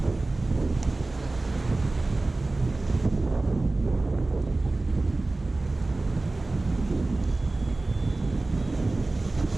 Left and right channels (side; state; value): left; quieter; 3.1 dB